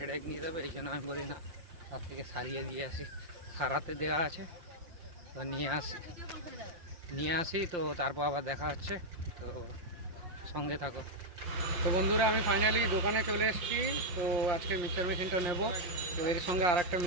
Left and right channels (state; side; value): late; left; 5.7 ms